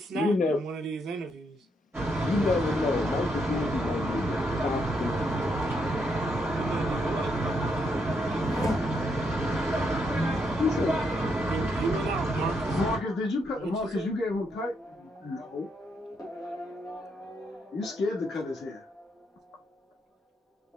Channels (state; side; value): normal; both; correlation 0.77